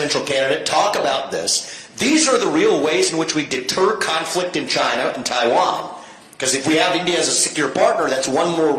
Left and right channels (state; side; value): identical; both; correlation 1.00